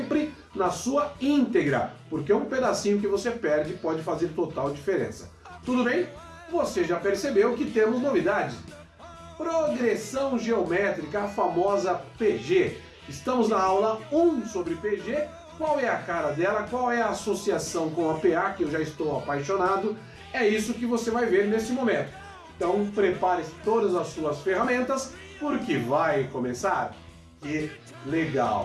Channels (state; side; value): identical; both; correlation 1.00